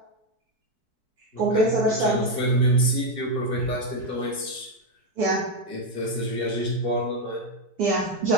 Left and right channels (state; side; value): late; left; 4.6 ms